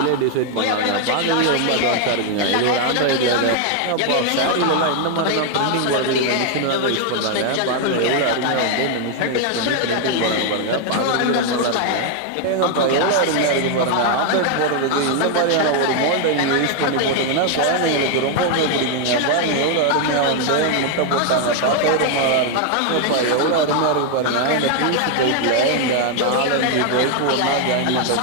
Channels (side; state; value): both; different; correlation 0.00